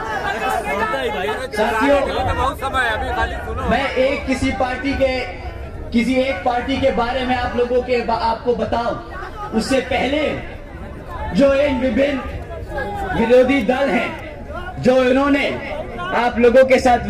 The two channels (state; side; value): identical; both; correlation 1.00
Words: साथियों, मैं किसी एक पार्टी के बारे में आपको बताऊं, उससे पहले जो इन विभिन्न विरोधी दल हैं, जो इन्होंने आप लोगों के साथ